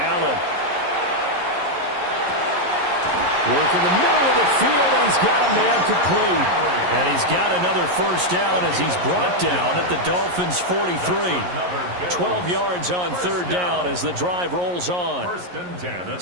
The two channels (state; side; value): late; left; 11 ms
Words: Work in the middle of the field, and he's got a man complete. And he's got another first down as he's brought down at the Dolphins' 43. 12 yards on 3rd down as the drive rolls on.